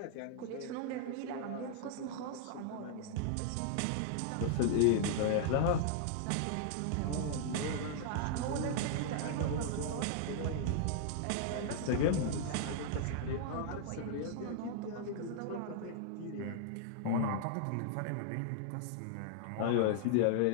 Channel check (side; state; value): both; different; correlation -0.01